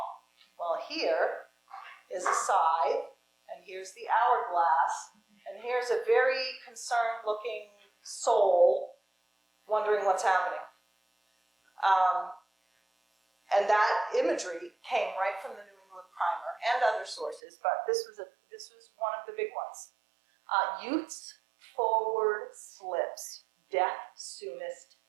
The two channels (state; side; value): drops out; left; at 17.4 s